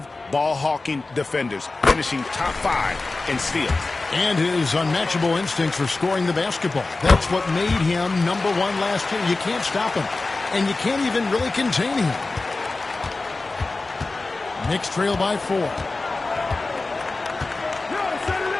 ball-hawking defenders, finishing top 5 in steals. And his unmatchable instincts for scoring the basketball. That's what made him #1 last year. You can't stop him. And you can't even really contain him. Knicks trail by 4.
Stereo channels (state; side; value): quieter; right; 3.4 dB